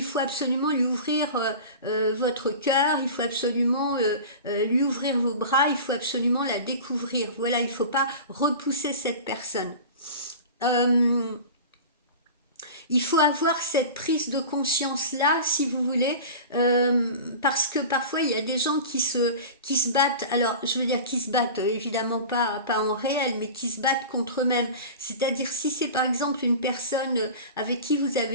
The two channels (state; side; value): inverted; both; correlation -0.34